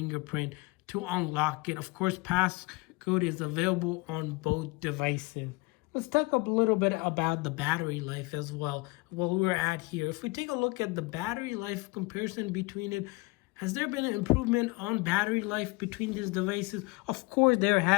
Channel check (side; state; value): right; quieter; 25.4 dB